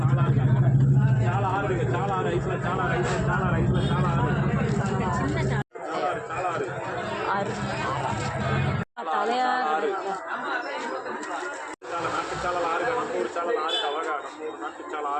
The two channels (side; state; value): both; identical; correlation 1.00